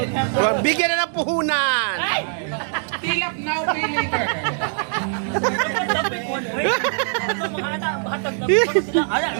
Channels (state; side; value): silent; left; 55 dB below the other